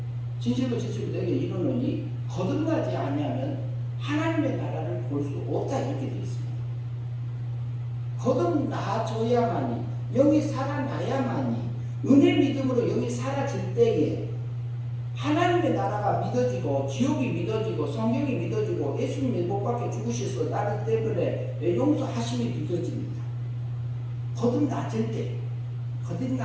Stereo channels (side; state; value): both; identical; correlation 1.00